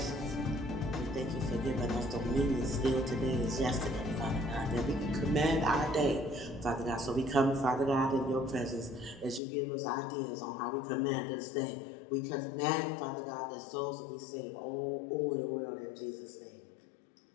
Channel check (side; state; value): right; drops out; at 9.4 s